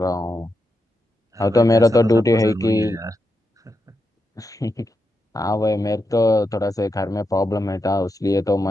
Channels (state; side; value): normal; both; correlation 0.86